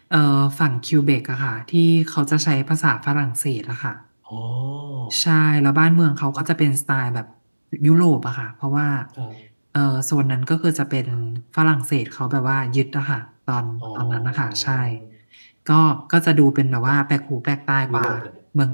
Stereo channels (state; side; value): inverted; both; correlation -1.00